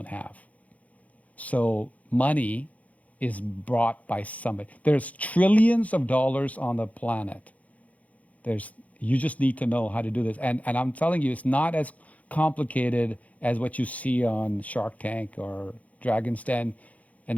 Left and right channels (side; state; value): right; late; 0.069 ms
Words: have. So money is brought by somebody. There's trillions of dollars on the planet. You just need to know how to do this. And I'm telling you, it's not as complicated as what you see on Shark Tank or Dragon's Den